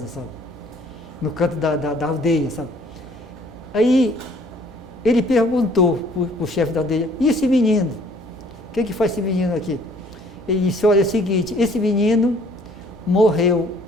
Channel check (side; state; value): both; normal; correlation 0.58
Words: sabe? No canto da aldeia, sabe? Aí ele perguntou para o chefe da aldeia, e esse menino? O que faz esse menino aqui? Ele disse, olha, é o seguinte, esse menino morreu